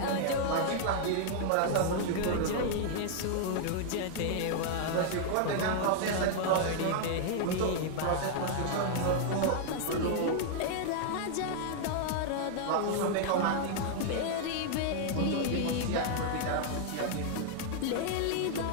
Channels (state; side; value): different; both; correlation -0.01